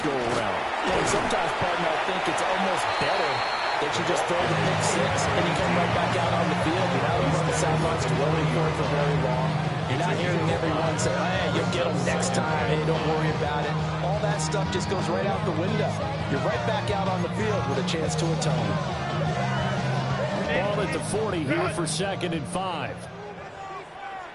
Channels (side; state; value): both; identical; correlation 1.00